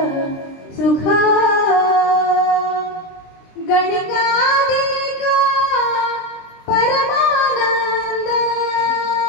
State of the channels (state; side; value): late; right; 23 ms